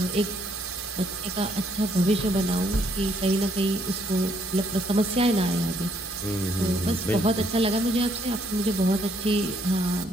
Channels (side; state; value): both; normal; correlation 0.70